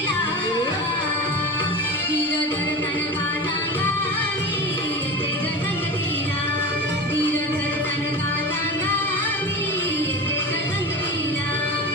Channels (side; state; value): left; noise; rumble, 29 dB below the sound